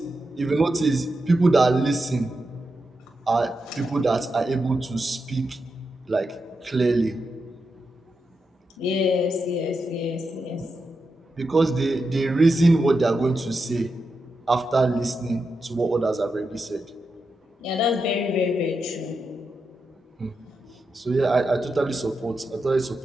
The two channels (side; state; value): both; normal; correlation 0.87